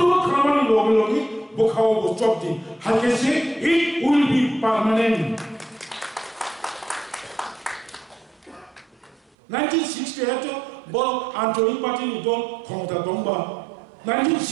Kramani Logi Bukao Chopti Hakese, it will be permanent. 1968 Bol Anthony Patin Don Konta Domba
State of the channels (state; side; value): drops out; left; at 9.3 s